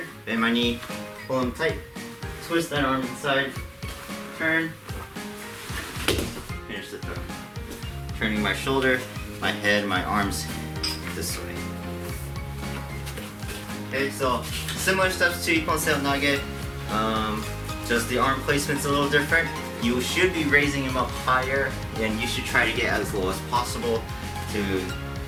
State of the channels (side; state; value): both; identical; correlation 1.00